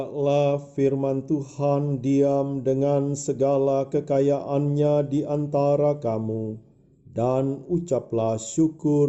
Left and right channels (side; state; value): both; identical; correlation 1.00